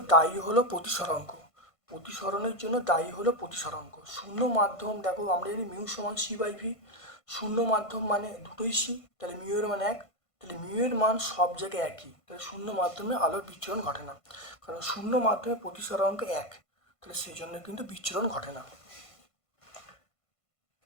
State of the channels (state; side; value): late; right; 1.5 ms